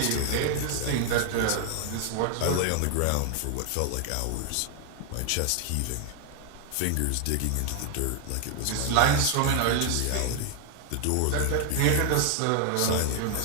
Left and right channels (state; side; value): different; both; correlation 0.00